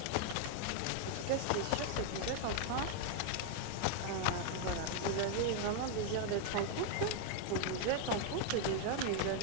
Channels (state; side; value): different; both; correlation 0.00